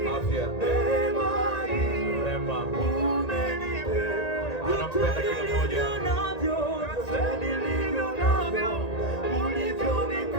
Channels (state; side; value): late; right; 1.9 ms